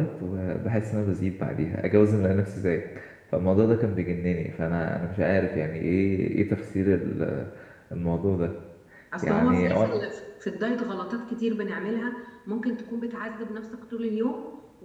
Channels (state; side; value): identical; both; correlation 1.00